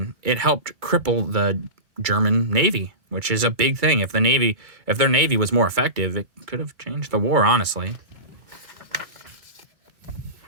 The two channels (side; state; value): left; late; 2.3 ms